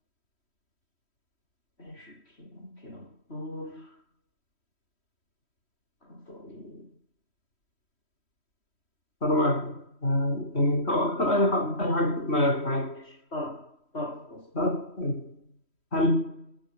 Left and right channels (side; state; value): right; late; 3.1 ms